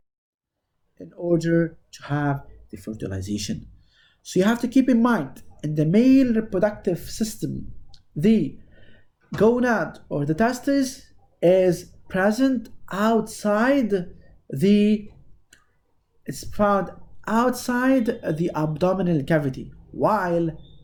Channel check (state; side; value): identical; both; correlation 1.00